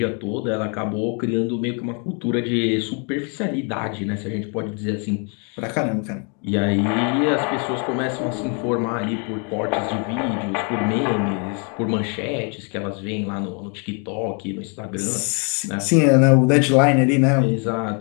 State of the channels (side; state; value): right; quieter; 37.3 dB